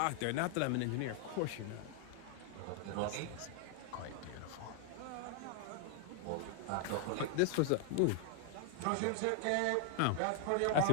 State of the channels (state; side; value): different; both; correlation 0.00